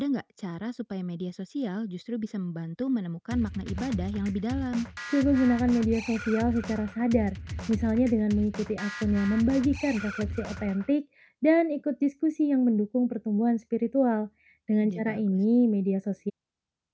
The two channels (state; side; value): identical; both; correlation 1.00